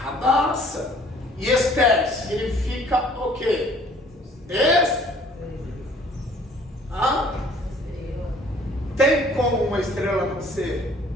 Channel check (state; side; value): normal; both; correlation 0.56